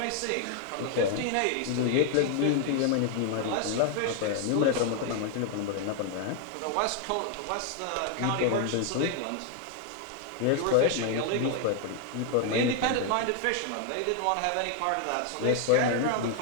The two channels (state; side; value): different; both; correlation 0.00